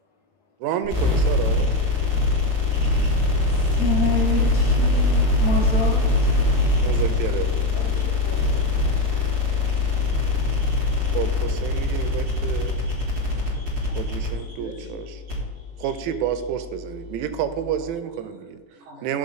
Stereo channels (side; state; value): left; late; 18 ms